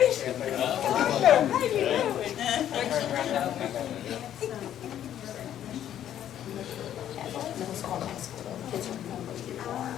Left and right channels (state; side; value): quieter; right; 10.9 dB